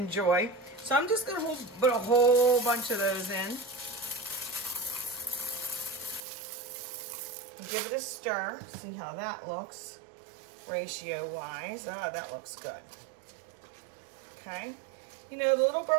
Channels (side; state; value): left; drops out; at 6.2 s